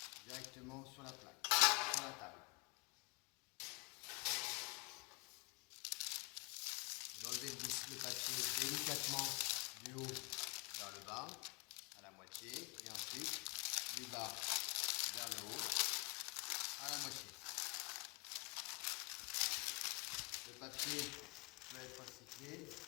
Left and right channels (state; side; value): quieter; right; 27.5 dB